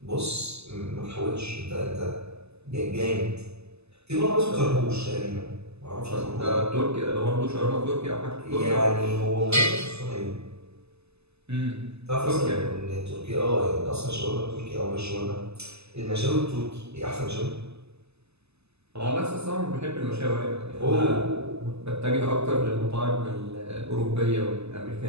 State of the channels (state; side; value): late; left; 0.79 ms